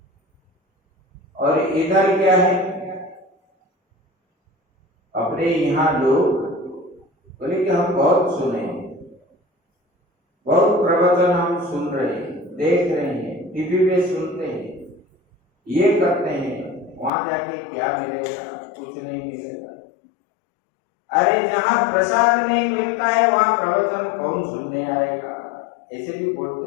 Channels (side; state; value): right; drops out; at 17.1 s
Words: और इधर क्या है, अपने यहाँ लोग बोले कि हम बहुत सुने, बहुत प्रवचन हम सुन रहे हैं, देख रहे हैं, टीवी में सुनते हैं, ये करते हैं, वहां जाके क्या मिलेगा, कुछ नहीं मिलेगा। अरे जहां प्रसाद नहीं मिलता है वहां प्रवचन कौन सुनने आएगा, ऐसे भी